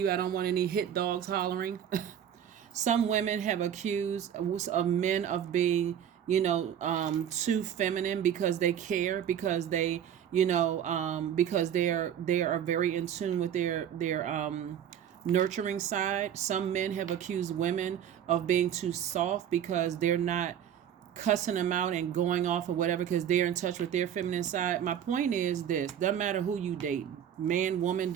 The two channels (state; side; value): quieter; left; 9.5 dB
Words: I don't want any hit dogs hollering. Some women have accused of men of being, too feminine because they care, because they, because they are very in tune with their nurturing side. Some men have accused women of being too soft because they're not cussing them out and going off or whatever because they're in touch with their feminine side. My point is this: doesn't matter who you date, man, woman,